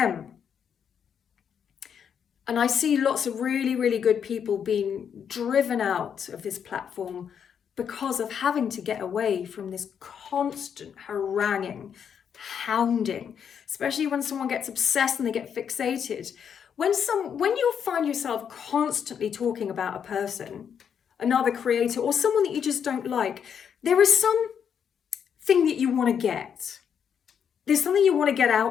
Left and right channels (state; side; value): quieter; right; 7.8 dB